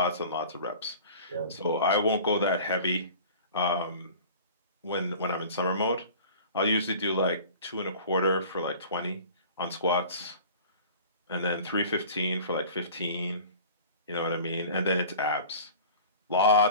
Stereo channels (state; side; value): inverted; both; correlation -0.42